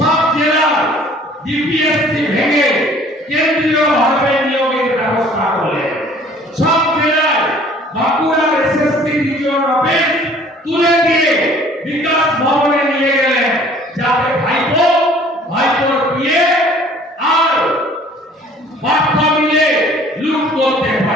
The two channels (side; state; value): both; normal; correlation 0.53